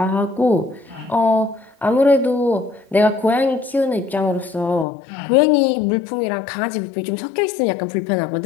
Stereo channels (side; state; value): right; drops out; at 4.9 s